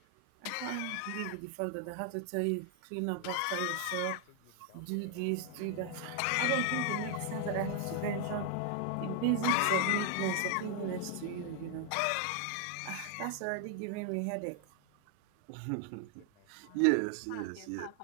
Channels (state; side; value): different; both; correlation 0.00